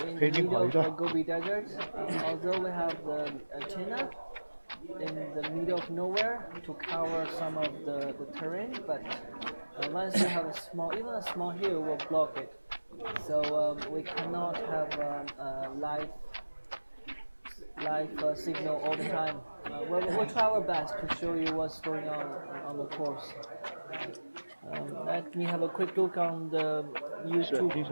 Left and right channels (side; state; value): both; inverted; correlation -1.00